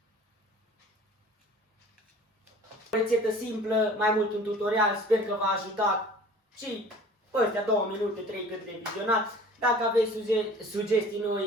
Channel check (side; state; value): both; normal; correlation 0.46